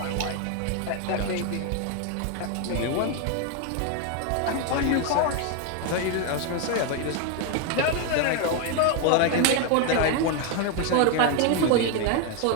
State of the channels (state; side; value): different; both; correlation 0.01